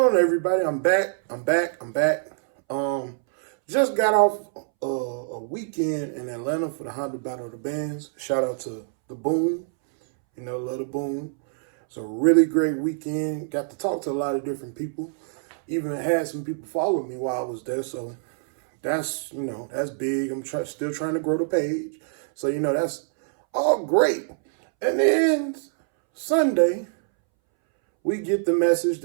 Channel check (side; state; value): left; silent; 62 dB below the other